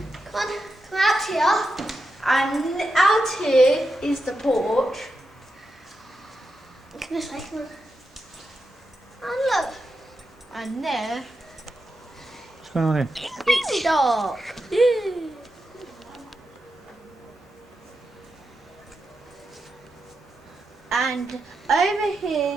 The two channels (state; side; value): normal; both; correlation 0.87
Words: Come out here. And out here is the porch. Come this way, come on. And look. And there, What's going on here? it's dark. And over here